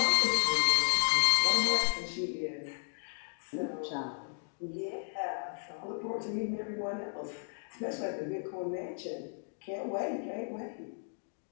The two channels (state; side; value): silent; right; digital silence